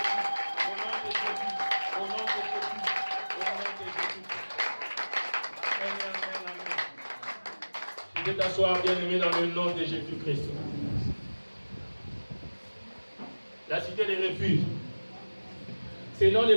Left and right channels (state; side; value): inverted; both; correlation -1.00